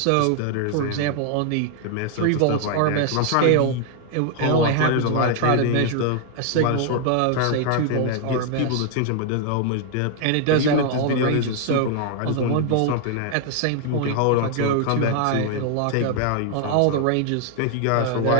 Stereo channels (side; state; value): both; different; correlation 0.00